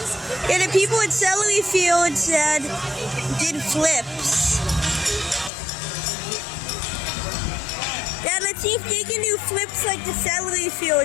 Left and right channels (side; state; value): right; drops out; at 5.5 s